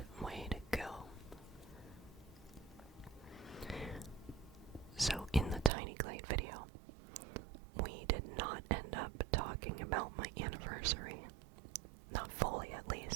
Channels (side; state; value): left; drops out; at 5.7 s